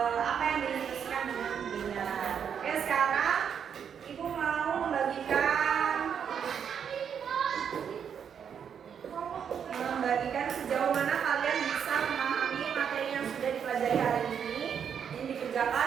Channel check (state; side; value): quieter; left; 7.7 dB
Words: sejauh mana kalian bisa memahami materi yang sudah dipelajari hari ini. Ini dikerjakan